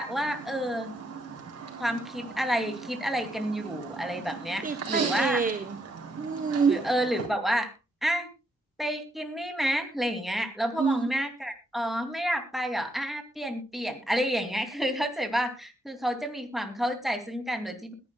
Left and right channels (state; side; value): normal; both; correlation 0.76